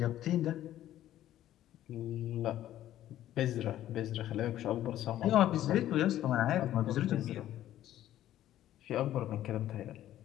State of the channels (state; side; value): quieter; right; 12.8 dB